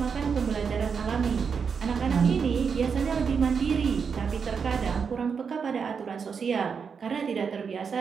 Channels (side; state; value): left; quieter; 6.1 dB